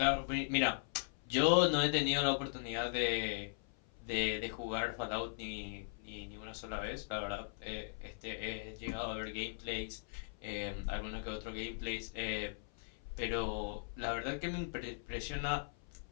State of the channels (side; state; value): right; silent; 52 dB below the other